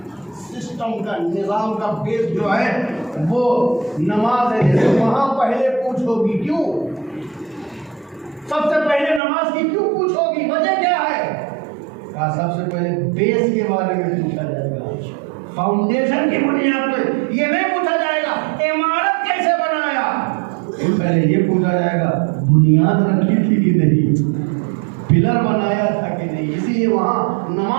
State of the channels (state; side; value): drops out; left; at 9.2 s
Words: سسٹم کا، نظام کا بیس جو ہے وہ نماز ہے. جیسے وہاں پہلے پوچھو گی کیوں، سب سے پہلے نماز کی کیوں پوچھو گی، وجہ کیا ہے؟ کہا سب سے پہلے بیس کے بارے میں پوچھا جائے گا، فاؤنڈیشن کی بنیاد پہ. یہ نہیں پوچھا جائے گا عمارت کیسے بنایا، پہلے یہ پوچھا جائے گا بنیاد رکھی تھی کہ نہیں، پلر بنایا تھا کہ نہیں. اسی لیے وہاں